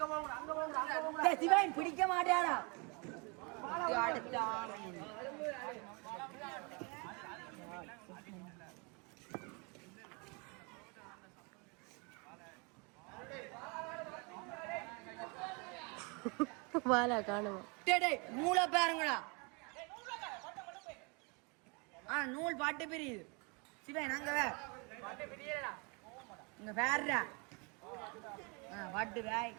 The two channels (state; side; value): quieter; left; 31.8 dB